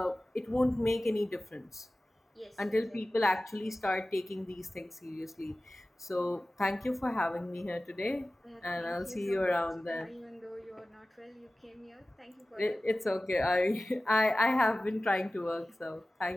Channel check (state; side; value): normal; both; correlation 0.96